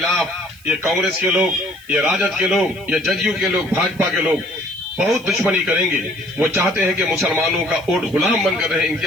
ये कांग्रेस के लोग, ये राजद के लोग, ये जदयू के लोग, भाजपा के लोग बहुत दुश्मनी करेंगे। वो चाहते हैं कि मुसलमानों का वोट गुलाम बनकर रहे, इनकी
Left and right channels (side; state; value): right; noise; hiss, 24 dB below the sound